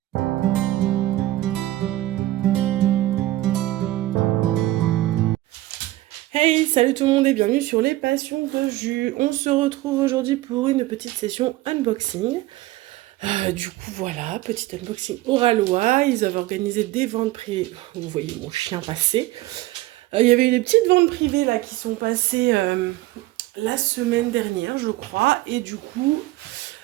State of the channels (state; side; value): quieter; left; 16.9 dB